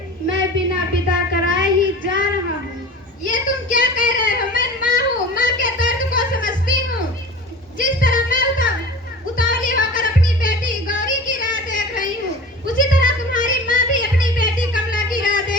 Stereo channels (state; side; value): normal; both; correlation 0.37